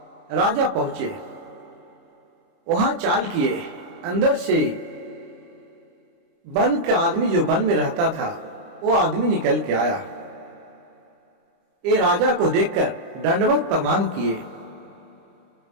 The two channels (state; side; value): late; left; 30 ms